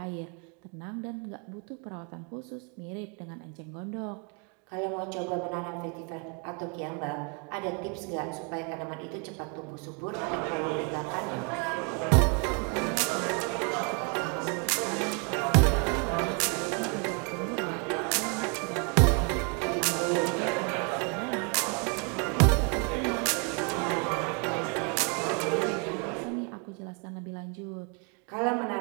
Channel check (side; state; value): left; quieter; 35.6 dB